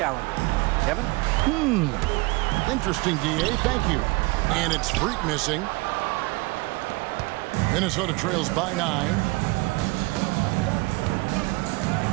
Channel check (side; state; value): left; quieter; 24.5 dB